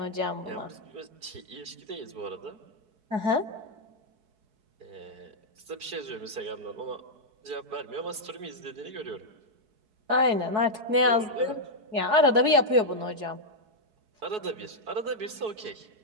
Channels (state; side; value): late; left; 4.7 ms